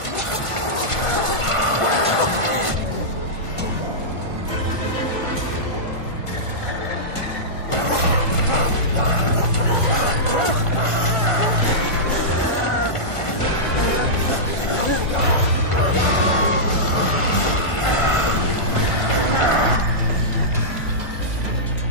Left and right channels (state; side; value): late; right; 1.5 ms